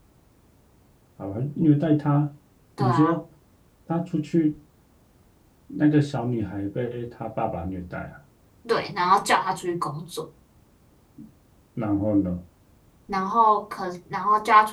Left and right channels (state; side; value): identical; both; correlation 1.00